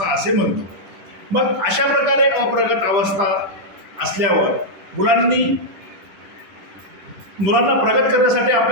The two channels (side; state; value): left; late; 10 ms